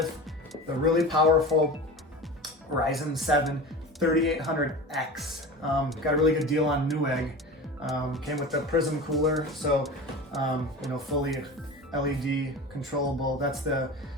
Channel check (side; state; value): both; normal; correlation 0.32